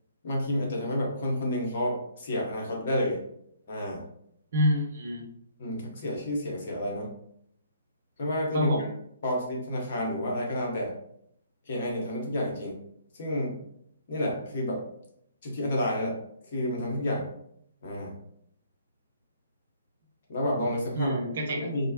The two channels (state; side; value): inverted; both; correlation -0.63